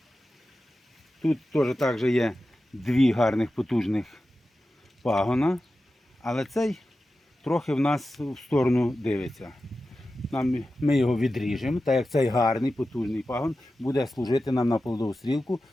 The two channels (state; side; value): normal; both; correlation 0.93